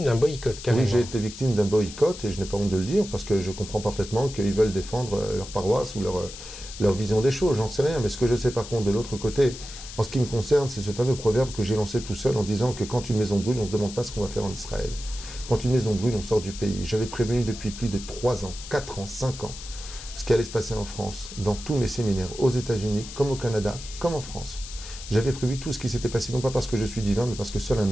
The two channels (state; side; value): noise; left; hiss, 13 dB below the sound